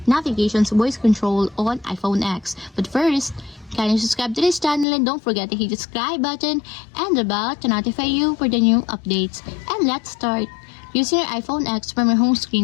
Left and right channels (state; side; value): drops out; right; at 4.9 s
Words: navigation's voice control on iPhone X. But first, kindly subscribe to this channel and don't forget to hit the subscribe button and the bell to notify you for the new updates. And let's start. Using your iPhone X from your home